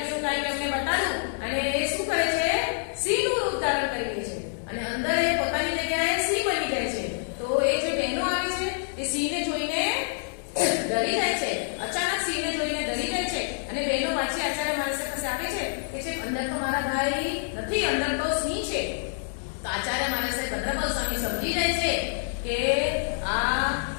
કાંઈક એમને બતાડું અને એ શું કરે છે? સિંહનું રૂપ ધારણ કરી લે છે અને અંદર એ પોતાની જગ્યાએ સિંહ બની જાય છે. તો એ જે બહેનો આવી છે એ સિંહને જોઈને ડરી જાય છે. અચાનક સિંહને જોઈને ડરી જાય છે અને બહેનો પાછી આચાર્ય મહારાજ પાસે આવે છે કે છે અંદર તો મારા ભાઈ નથી, અંદર તો સિંહ છે. તો આચાર્ય મહારાજ ભદ્રબાહુ સ્વામી સમજી જાય છે કે આ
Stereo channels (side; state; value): right; silent; digital silence